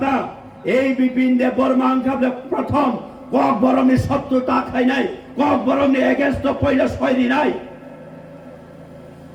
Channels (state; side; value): identical; both; correlation 1.00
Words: এই বিপিন দেব বর্মা আং খাবলে প্রথম কক বরমনি শত্রুতা খাই নাই কক বরমনি এগেন্স্ট পয়লা সয়রি নাই